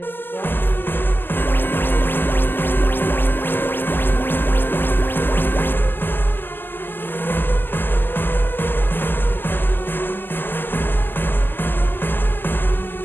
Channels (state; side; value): late; right; 0.093 ms